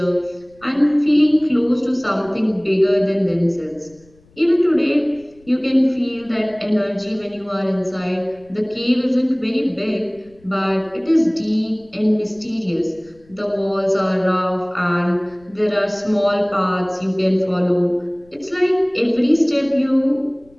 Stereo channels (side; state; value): left; noise; rumble, 30 dB below the sound